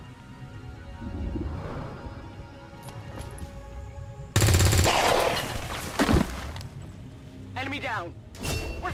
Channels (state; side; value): identical; both; correlation 1.00